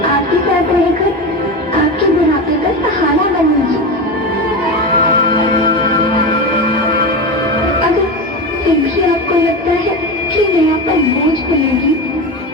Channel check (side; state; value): both; normal; correlation 0.21